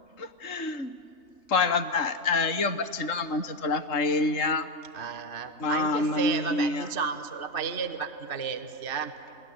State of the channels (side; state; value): right; late; 3.3 ms